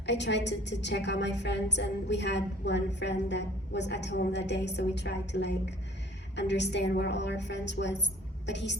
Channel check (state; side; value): normal; both; correlation 0.52